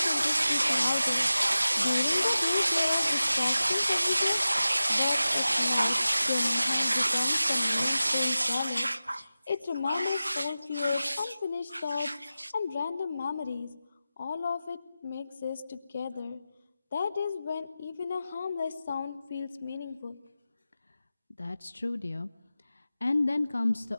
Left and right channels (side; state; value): both; inverted; correlation -0.94